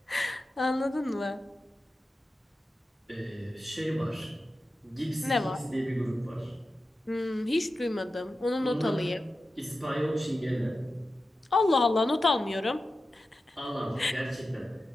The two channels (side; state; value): both; normal; correlation 0.93